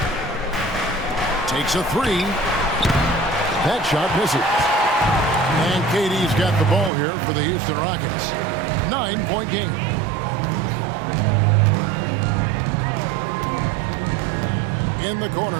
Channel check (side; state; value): left; drops out; at 6.9 s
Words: Takes a 3. That shot misses. And KD's got the ball here for the Houston Rockets. 9-point game. In the